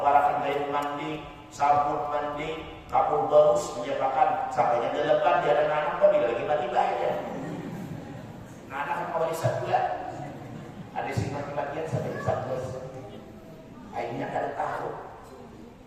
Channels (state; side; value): identical; both; correlation 1.00